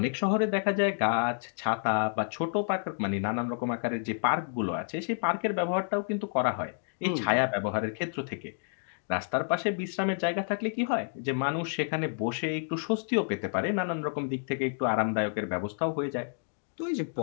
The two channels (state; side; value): silent; right; digital silence